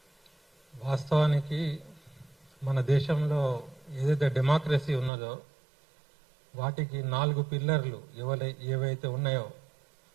వాస్తవానికి మన దేశంలో ఏదైతే డెమోక్రసీ ఉన్నదో వాటికి 4 పిల్లర్లు ఏవైతే ఉన్నాయో,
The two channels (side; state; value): left; drops out; at 5.1 s